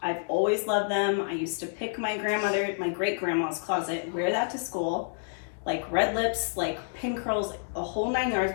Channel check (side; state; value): right; silent; digital silence